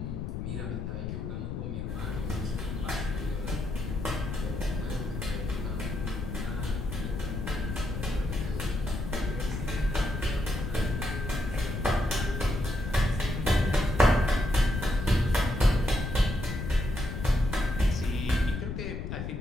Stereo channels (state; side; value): noise; left; rumble, 4 dB below the sound